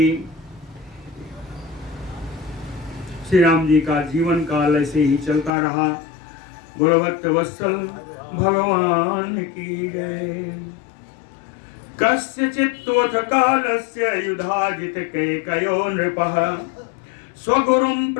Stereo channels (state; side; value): drops out; right; at 5.5 s